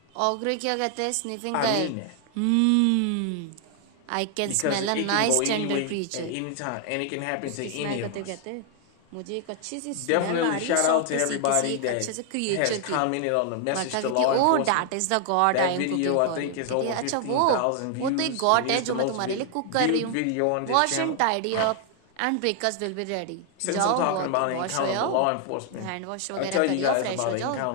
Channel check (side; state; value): both; different; correlation 0.00